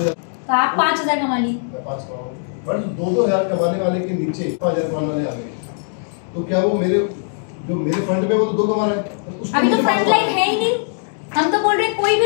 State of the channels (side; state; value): right; silent; digital silence